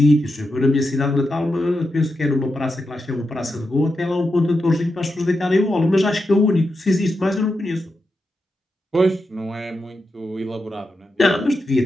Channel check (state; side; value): normal; both; correlation 0.87